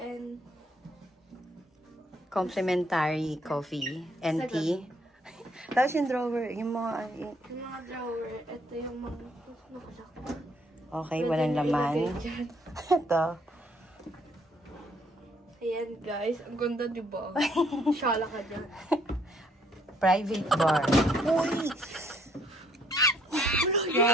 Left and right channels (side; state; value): both; normal; correlation 0.66